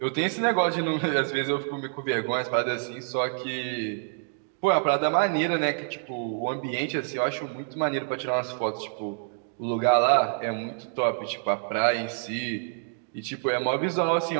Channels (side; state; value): left; silent; 60 dB below the other